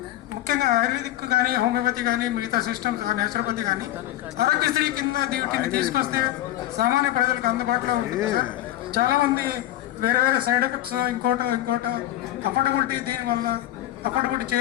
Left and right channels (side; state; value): right; quieter; 14.1 dB